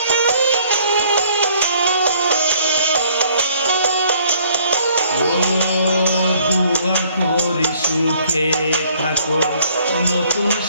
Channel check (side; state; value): both; inverted; correlation -0.61